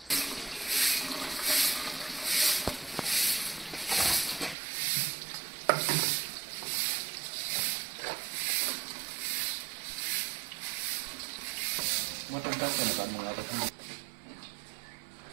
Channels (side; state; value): left; drops out; at 4.5 s